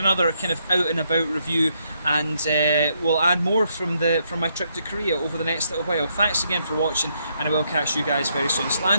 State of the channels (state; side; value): inverted; both; correlation -0.75